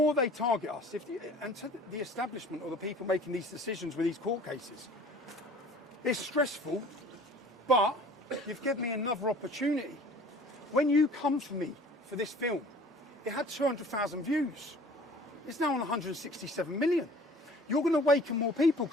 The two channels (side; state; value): both; normal; correlation 0.48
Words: they target us, and to the establishment or the people making these decisions with these court cases, it's stressful, but you've given me another opportunity. When you come for me for this film, it had 200,000 views. It's now on 167 million. You're going to awaken more people